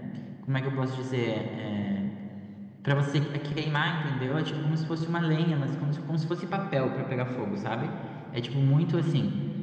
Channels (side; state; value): both; identical; correlation 1.00